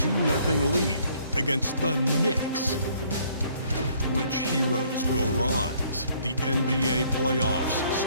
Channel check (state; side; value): inverted; both; correlation -0.63